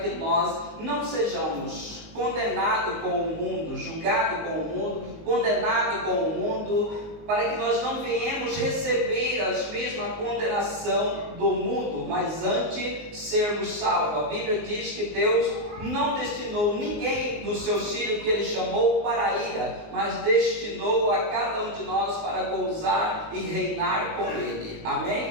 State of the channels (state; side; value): late; left; 19 ms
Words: nós não sejamos condenados com o mundo, julgados com o mundo, condenados com o mundo, para que nós não venhamos receber a mesma condenação do mundo, mas antes sermos salvos. A Bíblia diz que Deus não destinou ninguém dos seus filhos que Ele chamou para a ira, mas destinou a cada um de nós para gozar e reinar com Ele.